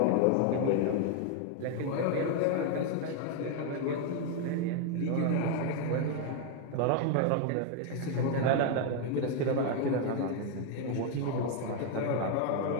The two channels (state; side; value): different; both; correlation 0.01